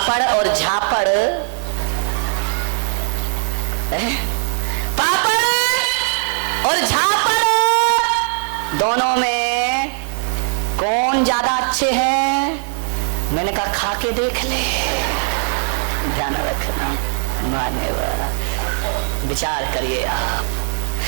और झापड़, पापड़ और झापड़ दोनों में कौन ज्यादा अच्छे हैं? मैंने कहा खा के देख ले। ध्यान रखना, मान्यवर, विचार करिए। आप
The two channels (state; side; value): silent; left; 60 dB below the other